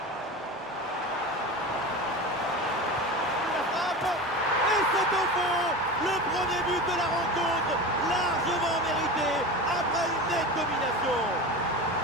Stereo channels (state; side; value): normal; both; correlation 0.29